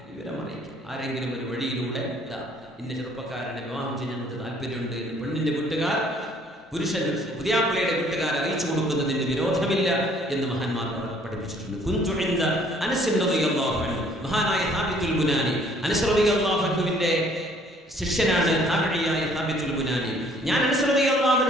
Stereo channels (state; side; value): normal; both; correlation 0.60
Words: വിവരം അറിയിക്കും. ആരെങ്കിലും ഒരു വഴിയിലൂടെ ഇന്ന ചെറുപ്പക്കാരനെ വിവാഹം ചെയ്യാൻ താല്പര്യമുണ്ട് എന്ന് പെണ്ണിന്റെ വീട്ടുകാർ പുരുഷൻ പുതിയാപ്പിളയുടെ വീട്ടുകാർ അറിയിച്ചു കൊടുക്കുന്നതിന് വിരോധമില്ല എന്ന് മഹാന്മാർ പഠിപ്പിച്ചിട്ടുണ്ട്. മഹാനായ സാബിത്തുൽ ബുനാനി, അനസ് റളിയല്ലാഹു അൻഹുവിന്റെ ശിഷ്യനാണ് താബിഈയായ സാബിത്തുൽ ബുനാനി. ഞാൻ അനസ് റളിയല്ലാഹു